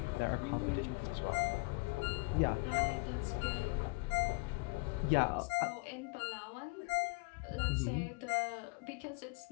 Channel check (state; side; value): quieter; right; 28.1 dB